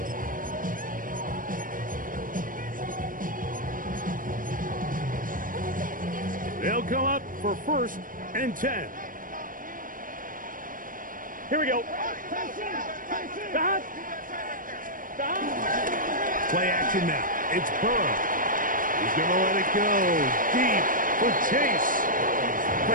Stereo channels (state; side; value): late; left; 0.40 ms